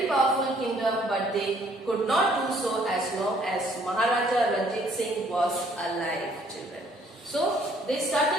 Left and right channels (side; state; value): both; normal; correlation 0.62